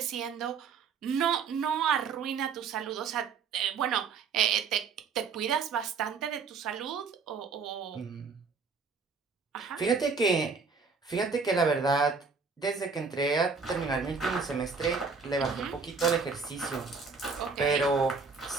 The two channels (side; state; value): left; quieter; 5.1 dB